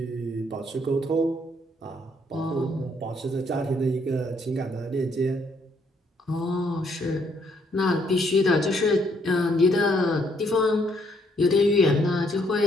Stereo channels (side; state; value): both; normal; correlation 0.69